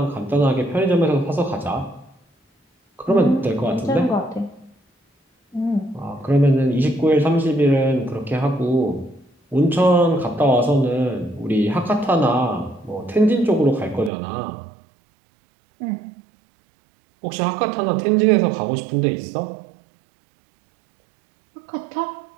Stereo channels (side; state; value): left; drops out; at 14.1 s